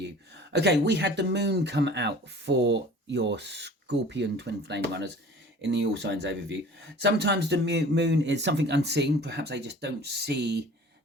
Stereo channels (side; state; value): both; normal; correlation 0.45